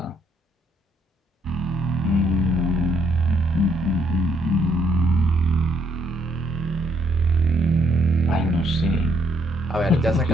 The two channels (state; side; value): normal; both; correlation 0.70